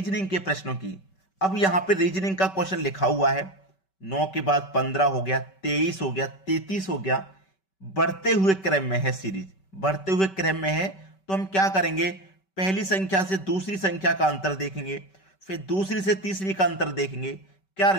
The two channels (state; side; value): late; right; 5.2 ms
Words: के प्रश्नों की। अब यहां पे रीजनिंग का क्वेश्चन लिखा हुआ है 9 के बाद 15 हो गया, 23 हो गया, 33 हो गया, बढ़ते हुए क्रम में है। सीरीज बढ़ते हुए क्रम में है तो हम क्या करेंगे, पहली संख्या से दूसरी संख्या का अंतर देखेंगे, फिर दूसरी से तीसरी का अंतर देखेंगे, क्या